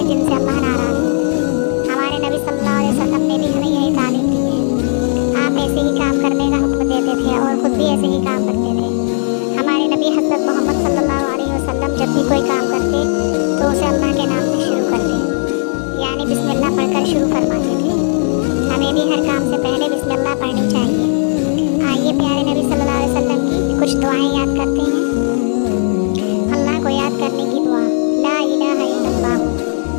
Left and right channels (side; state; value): right; silent; digital silence